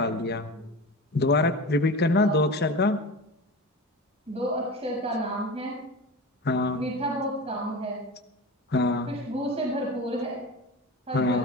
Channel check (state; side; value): normal; both; correlation 0.30